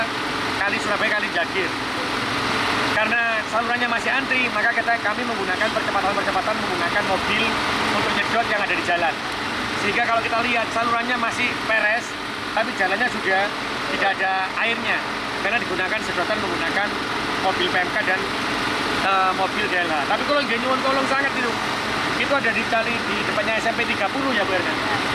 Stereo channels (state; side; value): identical; both; correlation 1.00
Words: Kali Surabaya, Kali Jagir. Karena salurannya masih antri, maka kami menggunakan percepatan menggunakan mobil untuk nyedot yang ada di jalan. Sehingga kalau kita lihat salurannya masih peres, tapi jalannya sudah tidak ada airnya, karena digunakan sedotan menggunakan mobil PMK dan mobil DLH. Tapi kalau nggak nyuwun tolong sangat itu ada di depannya SMP 30 ya Bu Erna.